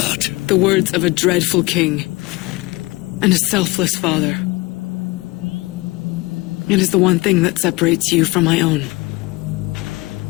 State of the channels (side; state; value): right; quieter; 23.0 dB